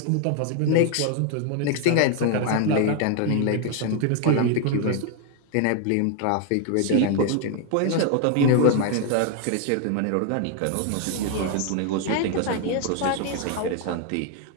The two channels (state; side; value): different; both; correlation 0.00